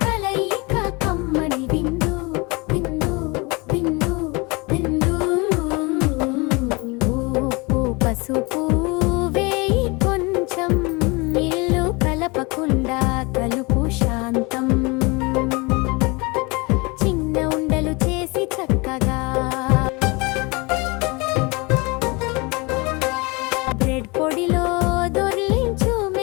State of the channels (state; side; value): quieter; right; 27.1 dB